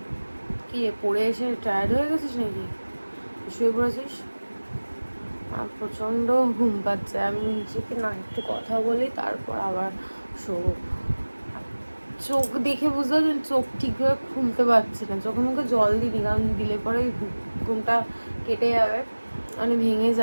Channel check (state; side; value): inverted; both; correlation -1.00